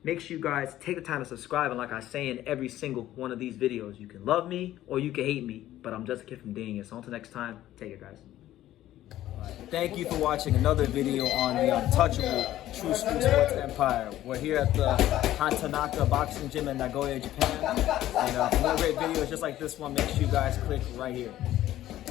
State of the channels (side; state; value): right; quieter; 13.7 dB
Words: Make sure you guys take the time to subscribe, and like I say in every single one of these videos, you can love me or you can hate me, but I'm just a kid from Dania. So until next time, take it, guys. Thank you for watching another video on the untouchable True School Sports Empire. We're here at the Hatanaka Boxing Gym in Nagoya, Japan. And for more great videos just like this one, make sure you guys click right here.